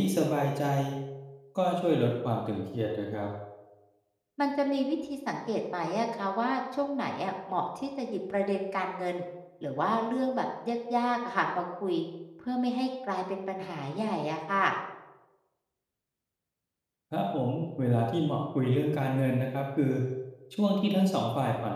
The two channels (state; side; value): identical; both; correlation 1.00